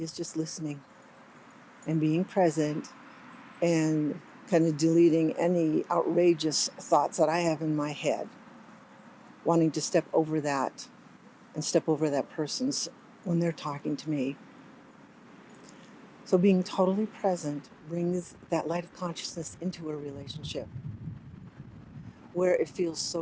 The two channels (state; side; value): identical; both; correlation 1.00